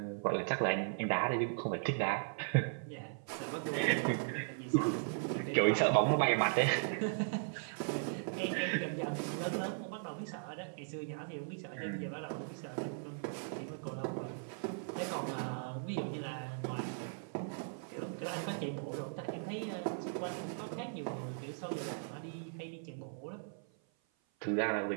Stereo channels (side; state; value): left; silent; 53 dB below the other